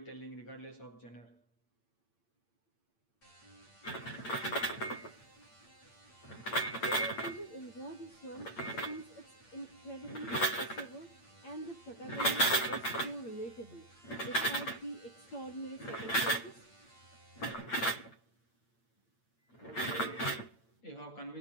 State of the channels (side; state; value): right; late; 8.7 ms